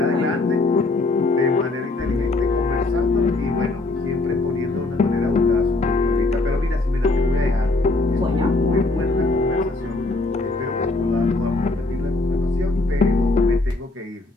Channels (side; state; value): right; quieter; 3.1 dB